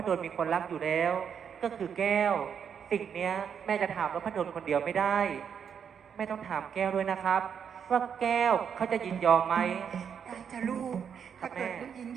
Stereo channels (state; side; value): quieter; left; 7.5 dB